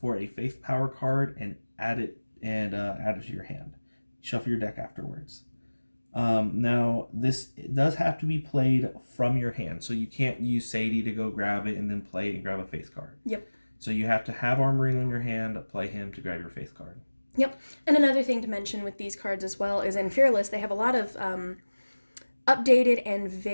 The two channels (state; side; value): inverted; both; correlation -1.00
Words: a faith power card and add it to your hand. Shuffle your deck afterwards. Now this does have to be played from your hand, so you can't use Sadie to go grab it and then play it and grab a faith card. Yep. So you have to have Armorino in your hand, play him to grab your faith card. Yep. And another thing to mention with these cards as well is in Fearless, they have a lot of updated and